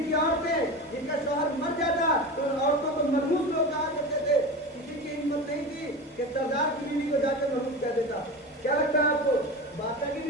کی عورتیں، جن کا شوہر مر جاتا تو ان عورتوں کو مرموز لوگ کہا کرتے تھے، کسی کی ہمت نہیں تھی کہ سردار کی بیوی کو جا کر مرموز کہہ دیتا۔ کیا لگتا ہے آپ کو؟ بادشاہ کی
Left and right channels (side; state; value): both; normal; correlation 0.28